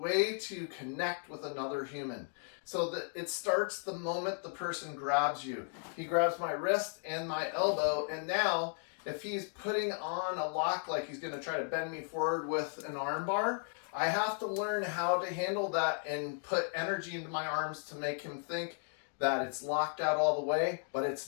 to connect with another human. So that it starts the moment the person grabs you. He grabs my wrist and my elbow, and now if he's putting on a lock like he's going to try to bend me forward with an arm bar, I have to learn how to handle that and put energy into my arms to make him think that it's locked out all the way, but it's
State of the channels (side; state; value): right; silent; 54 dB below the other